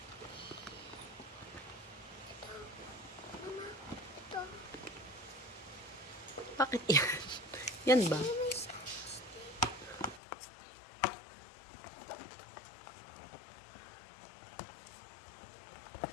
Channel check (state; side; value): drops out; right; at 10.2 s